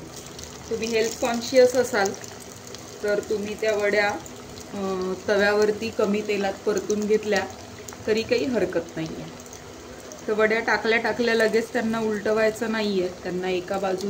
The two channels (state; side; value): identical; both; correlation 1.00